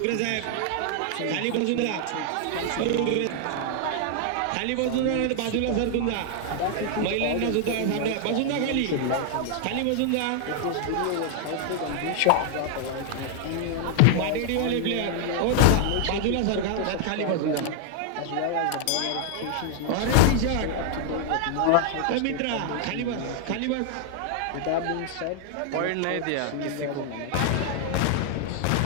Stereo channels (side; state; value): both; different; correlation 0.00